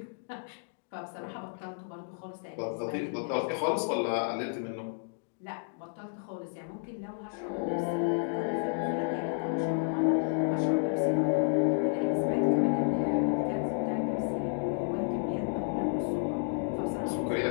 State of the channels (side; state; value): right; silent; digital silence